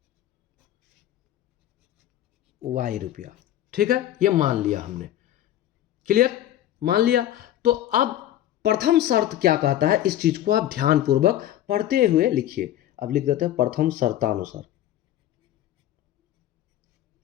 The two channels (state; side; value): quieter; right; 12.5 dB